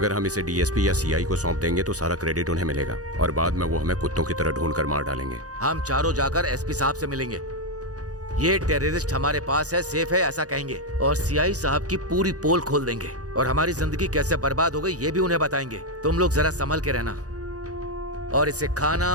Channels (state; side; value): late; left; 0.67 ms